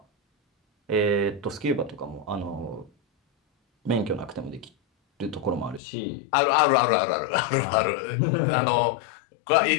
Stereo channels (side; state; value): right; drops out; at 5.8 s